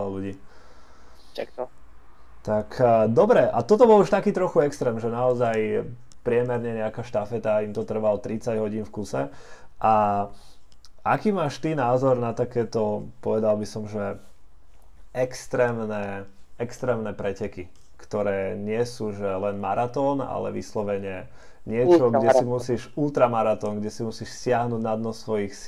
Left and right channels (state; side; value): identical; both; correlation 1.00